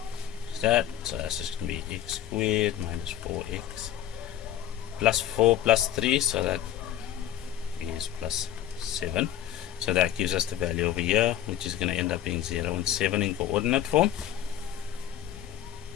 That, so that's just going to be x squared minus 4x plus 4 plus 3, so that is plus 7. So that gives us the value over here, which is going to end up being 0 and 7 in coordinate form.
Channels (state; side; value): quieter; right; 11.5 dB